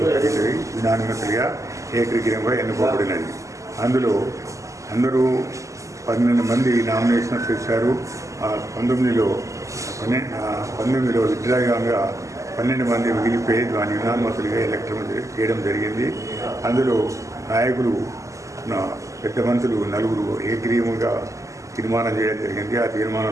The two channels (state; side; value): late; left; 0.16 ms